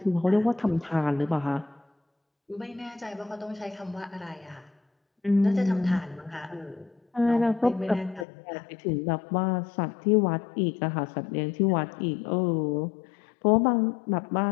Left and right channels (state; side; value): drops out; right; at 8.2 s